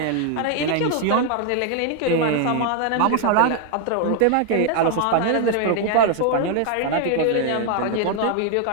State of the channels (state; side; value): different; both; correlation 0.00